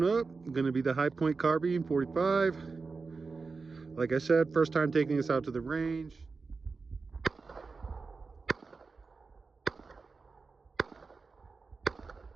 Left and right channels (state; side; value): quieter; left; 4.4 dB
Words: up, gonna be the High Point Carbine 45. Like I said, first time taking this out to the range.